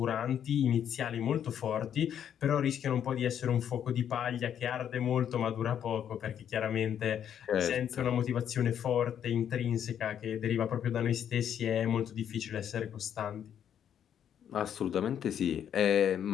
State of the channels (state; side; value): quieter; right; 9.2 dB